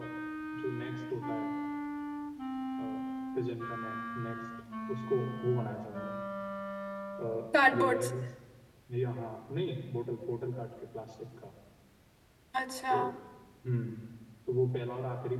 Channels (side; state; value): both; identical; correlation 1.00